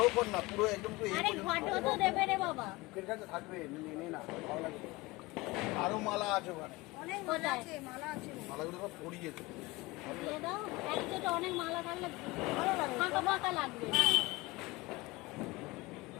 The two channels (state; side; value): quieter; right; 22.0 dB